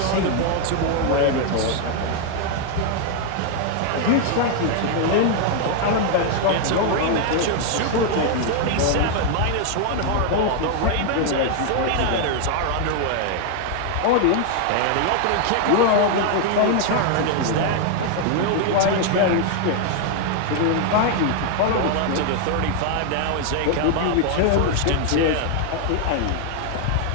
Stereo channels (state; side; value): different; both; correlation 0.00